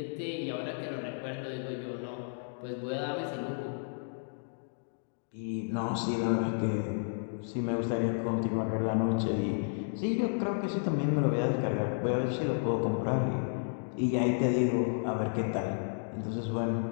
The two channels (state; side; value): silent; right; digital silence